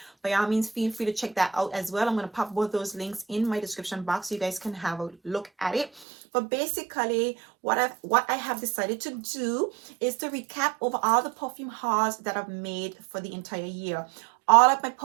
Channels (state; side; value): drops out; left; at 6.1 s